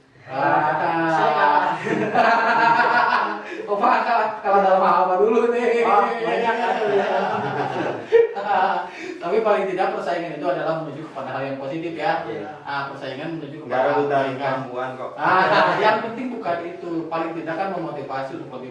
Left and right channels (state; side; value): identical; both; correlation 1.00